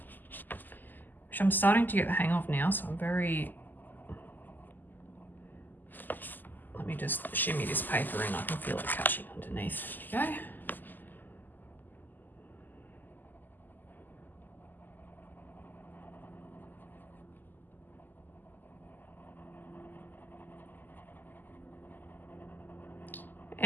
which I'm starting to get the hang of now, so I'm very... Let me just shimmy this paper in. I can feel it catching underneath. There we go.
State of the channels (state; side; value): late; right; 0.087 ms